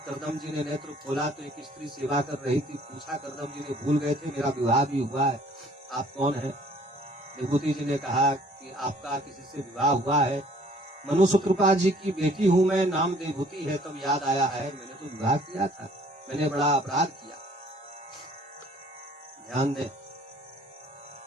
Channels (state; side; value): normal; both; correlation 0.57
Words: कर्दम जी ने नेत्र खोला तो एक स्त्री सेवा कर रही थी। पूछा, कर्दम जी ने भूल गए थे, मेरा विवाह भी हुआ है, आप कौन है? देवहूति जी ने कहा कि आपका किसी से विवाह हुआ है। मनुष्य कृपा जी की बेटी हूं मैं, नाम देवहूति है। तब याद आया है, मैंने तो विवाह किया था, मैंने बड़ा अपराध किया। ध्यान दें,